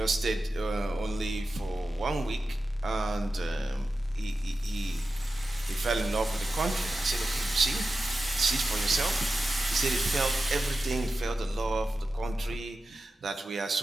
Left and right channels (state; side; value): normal; both; correlation 0.92